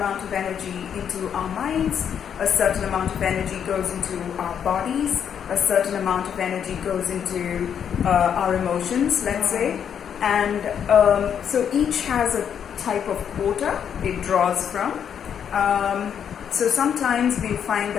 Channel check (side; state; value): right; quieter; 8.2 dB